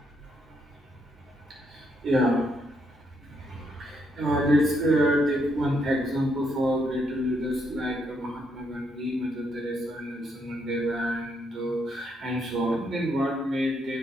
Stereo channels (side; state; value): both; normal; correlation 0.76